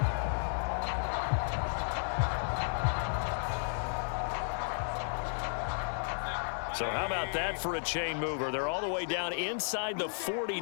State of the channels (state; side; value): silent; right; digital silence